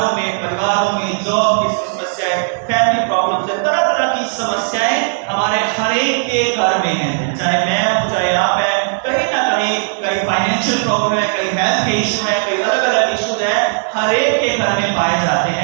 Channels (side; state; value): left; silent; 69 dB below the other